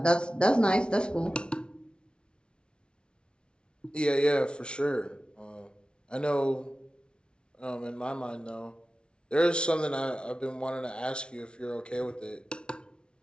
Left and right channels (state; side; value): late; right; 0.056 ms